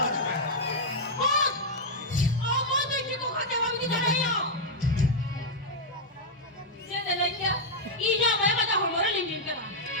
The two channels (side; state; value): both; normal; correlation -0.05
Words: 아주 왜 Apa tu kita kata kami kita ada. Jangan lagi kau. Ini apa yang kita hormon lingkin kara.